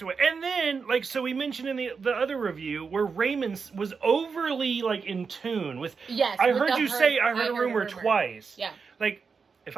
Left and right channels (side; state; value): left; quieter; 5.3 dB